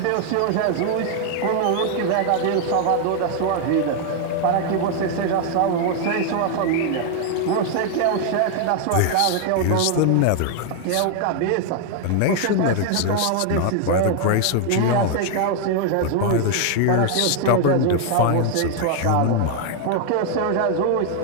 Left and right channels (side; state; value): both; different; correlation 0.00